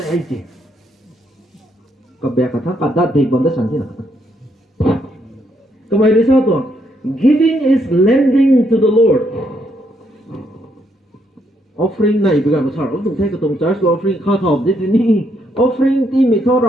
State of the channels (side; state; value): both; normal; correlation 0.74